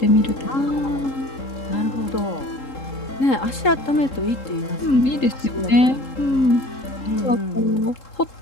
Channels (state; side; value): late; right; 3.7 ms